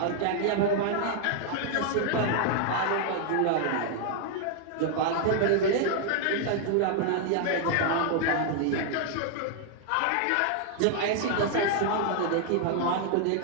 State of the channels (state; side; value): different; both; correlation 0.00